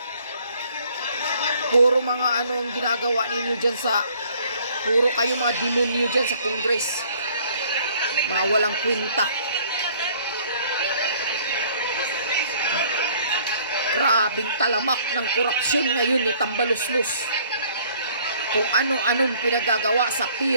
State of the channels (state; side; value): inverted; both; correlation -0.58